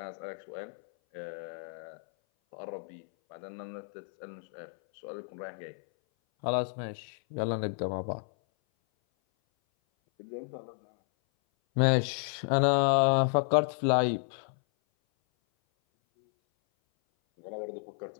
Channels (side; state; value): right; silent; 57 dB below the other